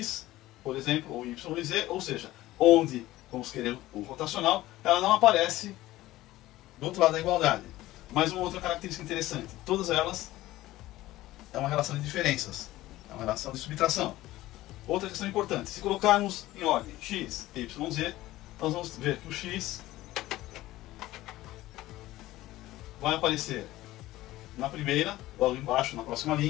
por exemplo, ou y e z, ou seja, onde vamos querer o rotacional, ela não aparece do outro lado da igualdade. Mais uma outra característica interessante, todas elas é uma relação de diferenças, é uma relação de subtração. Outra questão importante, se colocarmos em ordem x, y, z, nós vamos ver que o x vai aparecer na primeira, logo embaixo, na próxima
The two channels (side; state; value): right; quieter; 16.5 dB